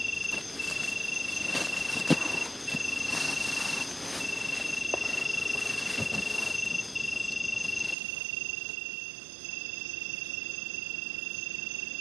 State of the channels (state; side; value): drops out; left; at 8.0 s